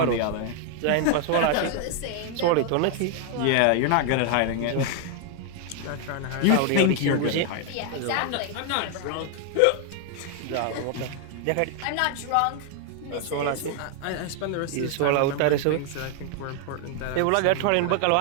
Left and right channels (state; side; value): different; both; correlation 0.00